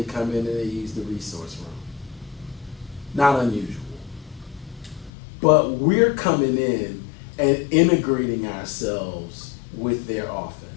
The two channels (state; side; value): drops out; right; at 5.1 s